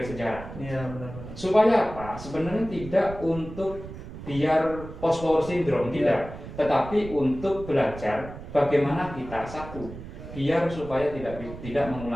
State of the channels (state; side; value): noise; right; rumble, 12 dB below the sound